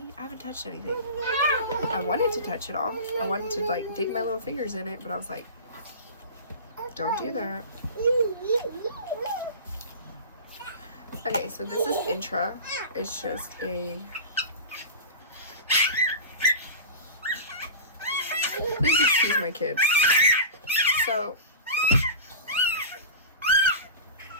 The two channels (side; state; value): both; inverted; correlation -0.31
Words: I haven't touched anything. I wanted to touch it all. I wanted to like dig my little fingers in it, but I was like, don't do that. Okay, so this is Intra. It's just a... Please excuse my kids. So,